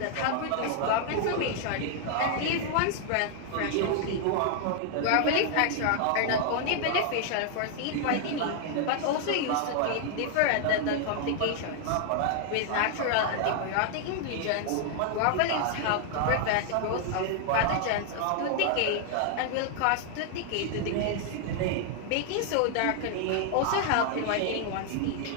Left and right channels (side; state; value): both; different; correlation 0.00